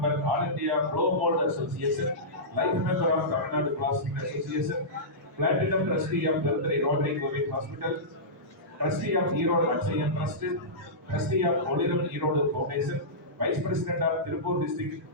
all India blow mould association, life member of Tamil Nadu plastic association, Platinum Trustee of Birthday Rotary Covid Hospital, Trustee of Erode Akshayan Trust, Trustee of Oliram Erode Foundation, Vice President of Tirupur District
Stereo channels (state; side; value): normal; both; correlation -0.16